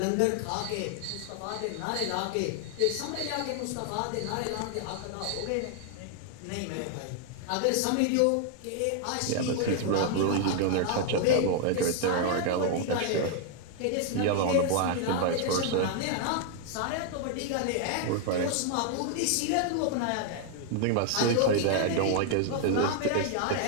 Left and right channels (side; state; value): both; different; correlation 0.00